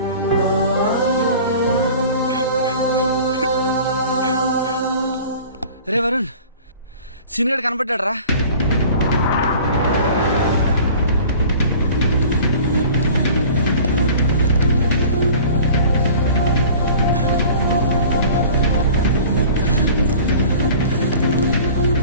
రే వరుణ్, సీనియర్ కనపడ్డాడు రా.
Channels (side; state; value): both; inverted; correlation -0.43